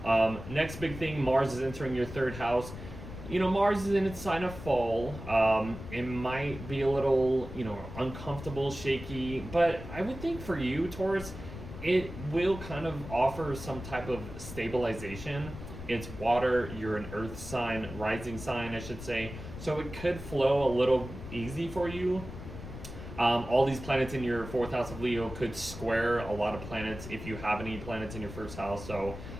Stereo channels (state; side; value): noise; left; rumble, 11 dB below the sound